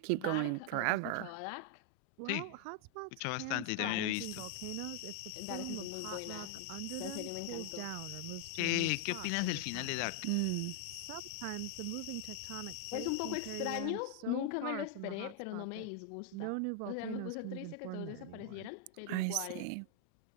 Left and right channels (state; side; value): different; both; correlation 0.00